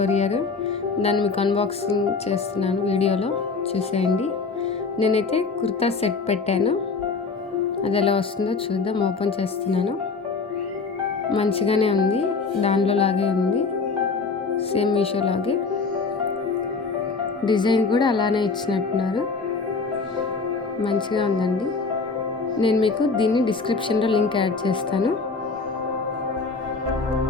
దాన్ని మీకు అన్బాక్సింగ్ చేస్తున్నాను, వీడియోలో చూసేయండి. నేనైతే కుర్తా సెట్ పెట్టాను, అది ఎలా వస్తుందో చూద్దాం. ఓపెన్ చేస్తున్నాను. మంచిగానే ఉంది, దానిలో లాగే ఉంది, సేమ్ మీషో లాగే. డిజైన్ కూడా అలానే ఇచ్చినట్టున్నారు, మంచిగా ఉందండి. నేను మీకు దీన్ని డిస్క్రిప్షన్లో లింక్ యాడ్ చేస్తాను,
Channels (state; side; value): quieter; right; 4.4 dB